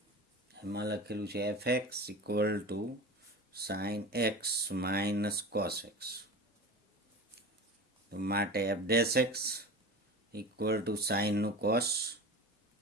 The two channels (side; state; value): both; normal; correlation 0.32